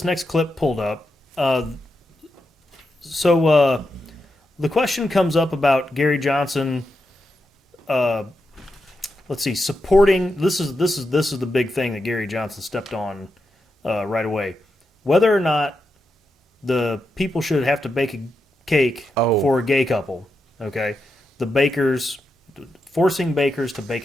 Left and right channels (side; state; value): both; normal; correlation 0.86